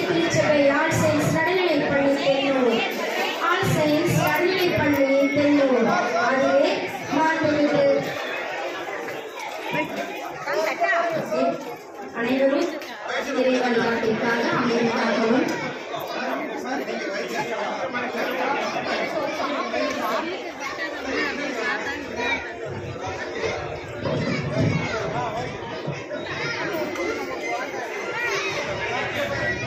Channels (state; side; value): identical; both; correlation 1.00